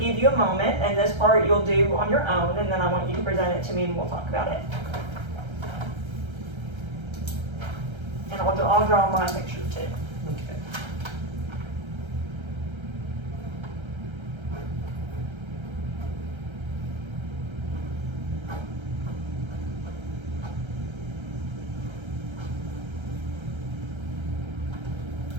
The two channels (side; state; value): left; late; 1.3 ms